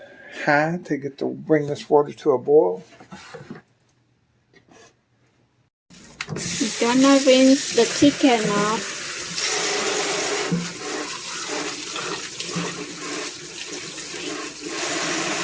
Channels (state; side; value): identical; both; correlation 1.00